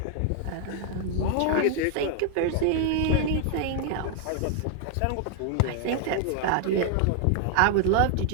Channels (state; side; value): different; both; correlation 0.00